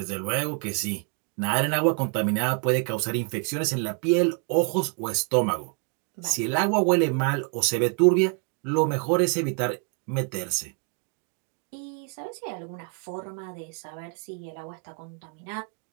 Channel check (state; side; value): quieter; left; 39.1 dB